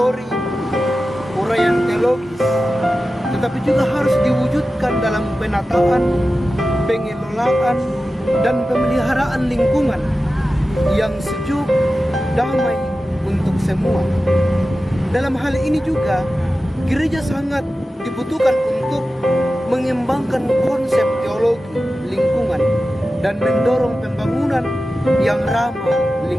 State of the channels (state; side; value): normal; both; correlation 0.94